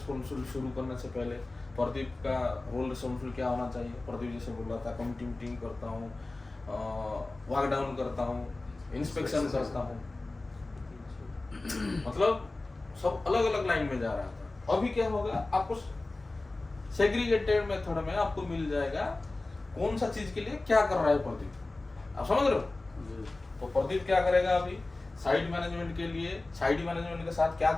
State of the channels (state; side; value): quieter; right; 3.1 dB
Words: शुरू करने से पहले प्रदीप का रोल रिस्पॉन्सिबल क्या होना चाहिए। प्रदीप जैसे बोल रहा था, कमिटी मीटिंग करता हूँ, वर्क डाउन करता हूँ, इंस्पेक्शन करता हूँ, मतलब सब अलग अलग लाइन में जा रहा था। अभी क्या होगा, आपको सेग्रीगेटेड मेथड में आपको मिल जाएगा कौन सा चीज के लिए क्या कर रहा है प्रदीप। आप समझ रहे हो? तो प्रदीप क्या करेगा अभी साइड मैनेजमेंट के लिए, साइड मैनेजमेंट के साथ क्या